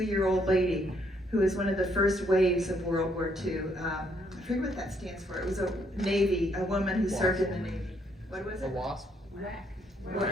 lady who was one of the first waves of World War II. I forget what that stands for. It was a woman who served in the Navy. What was it? A wasp?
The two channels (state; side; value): normal; both; correlation 0.71